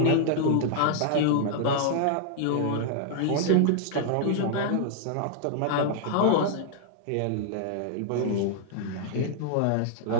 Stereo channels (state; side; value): different; both; correlation -0.01